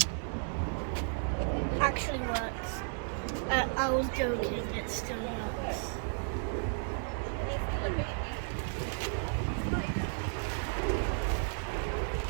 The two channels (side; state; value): left; silent; 55 dB below the other